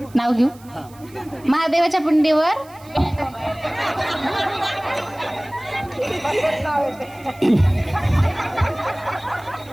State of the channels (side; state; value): right; noise; hiss, 25 dB below the sound